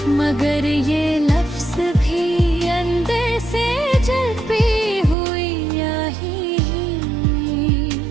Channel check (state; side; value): drops out; left; at 5.2 s